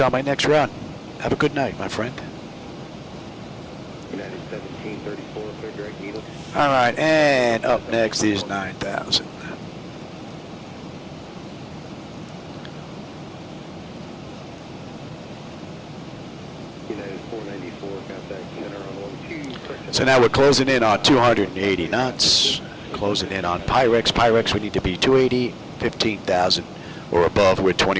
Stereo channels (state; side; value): identical; both; correlation 1.00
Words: on my next run. Have a good night, my friend. United 1734, clear direct needle. All right, and up next is 9,000. United 494, contact center on 12. So now we're closing in on 280 knots. Closing in on Pyrex. Pyrex, we need to be 280, 15,000 or above. We're